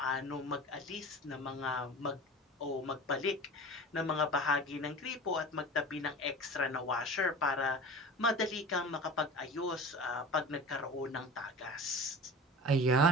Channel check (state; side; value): normal; both; correlation 0.37